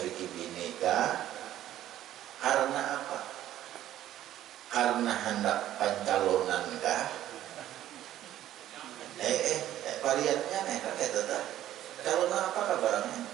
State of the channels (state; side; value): quieter; left; 12.7 dB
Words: bini kah? Karena apa? Karena hendak pencalonan kah? Variannya nih kan kayak tetap. Calon apa kabarnya?